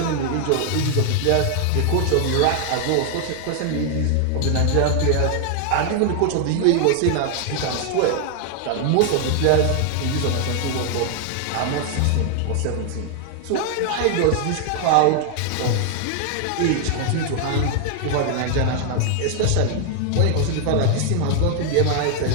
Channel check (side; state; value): both; different; correlation 0.00